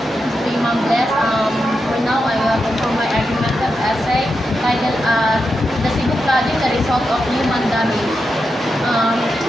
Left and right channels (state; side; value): normal; both; correlation 0.87